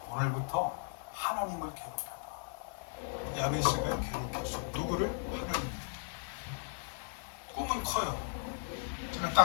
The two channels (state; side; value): silent; right; digital silence